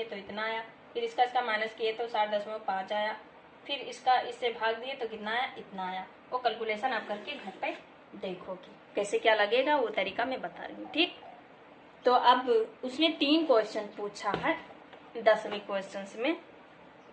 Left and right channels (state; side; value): identical; both; correlation 1.00